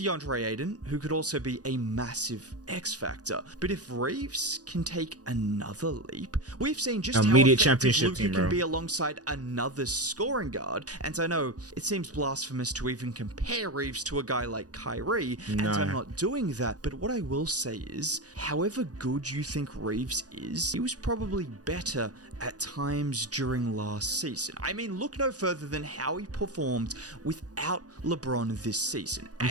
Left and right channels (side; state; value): left; late; 0.68 ms